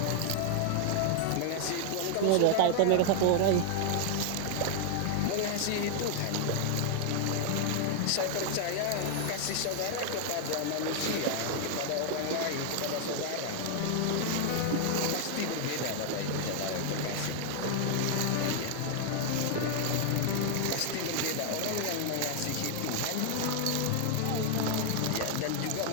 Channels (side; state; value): both; different; correlation 0.00